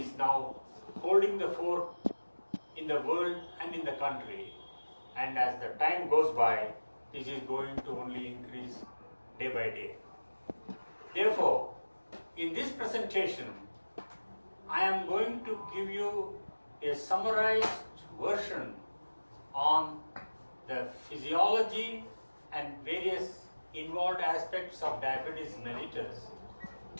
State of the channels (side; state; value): both; inverted; correlation -1.00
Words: now holding the fore in the world and in the country. And as the time goes by, this is going to only increase day by day. Therefore, in this presentation, I am going to give you a summarized version on the physiology and various involved aspects of diabetes mellitus.